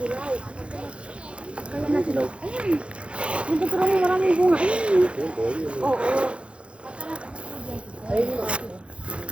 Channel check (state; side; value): late; left; 0.059 ms